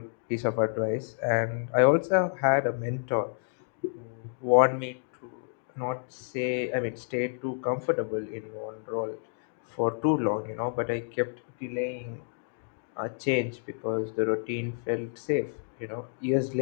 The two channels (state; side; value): silent; right; digital silence